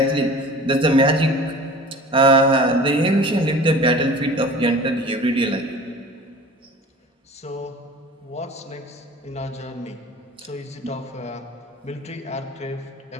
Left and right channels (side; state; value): both; normal; correlation 0.41